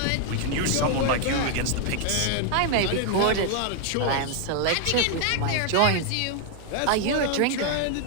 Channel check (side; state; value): both; different; correlation 0.00